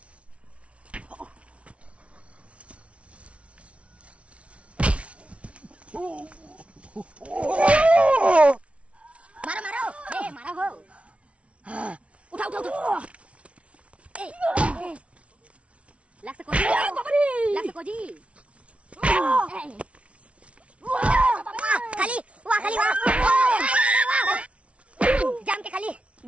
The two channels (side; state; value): left; late; 0.062 ms